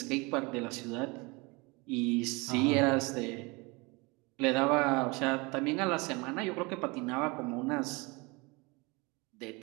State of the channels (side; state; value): left; quieter; 26.6 dB